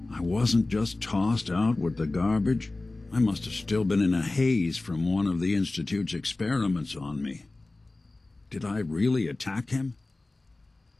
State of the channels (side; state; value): right; quieter; 3.0 dB